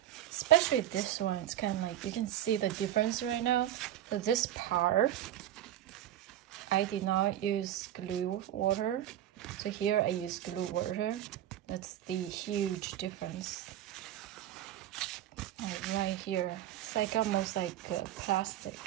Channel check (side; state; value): left; quieter; 12.2 dB